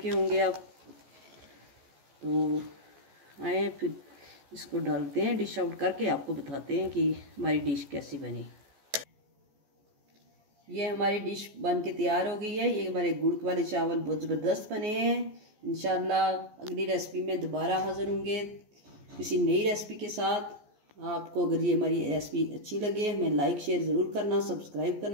होंगे आप। तो आए फिर इसको डालते हैं, डिश आउट करके आपको बताते हैं कि हमारी डिश कैसी बनी। ये हमारी डिश बन के तैयार हो गई है। ये हमारे गुड़ वाले चावल बहुत ज़बरदस्त बने हैं। इंशाल्लाह अगली रेसिपी में दोबारा हाज़िर होंगे किसी नई रेसिपी के साथ। आपको अगर ये हमारी रेसिपी अच्छी लगे हमें लाइक शेयर ज़रूर करना, सब्सक्राइब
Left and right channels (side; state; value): left; late; 14 ms